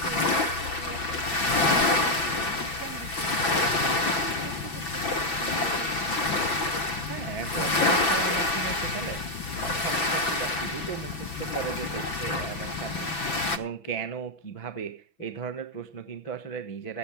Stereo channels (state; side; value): late; right; 6.1 ms